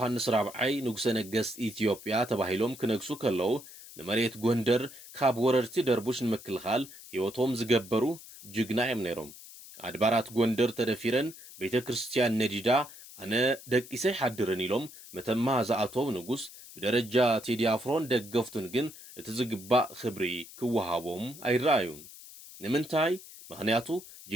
ራብዓይ ንጉሰ ነገስት ኢትዮጵያ ተባሂሎም ክነግሱ ከለዉ ንመሬት ጎንደር ካብ ወረርቲ ደርቡሽ ንምክልኻል ሕይወቶም ዝገበሩ ጅግና እዮም ነይሮም። ኣድባራት ጎንደር ተደፊረን ቤተ ክርስቲያን ነዲዳ ኣነ ደቂሰይ ሓድርን ኢሎም መተማ ዝኣተው ንጉስ ብደረጃ ቴዲ ኣፍሮን ደገፍቱን ግን እቲ ዝግባእ ክብሪ ክወሃቦም ኣይረኣዩን። ንምንታይ? ምክንያቱ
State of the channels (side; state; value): left; noise; hiss, 17 dB below the sound